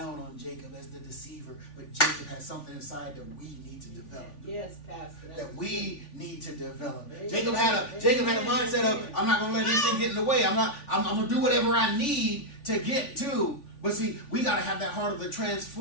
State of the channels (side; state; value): right; late; 3.5 ms